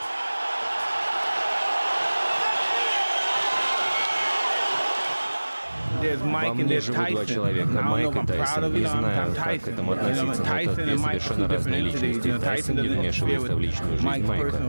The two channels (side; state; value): both; inverted; correlation -1.00